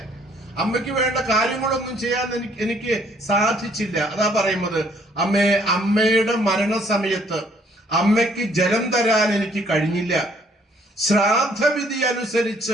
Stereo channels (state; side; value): normal; both; correlation 0.63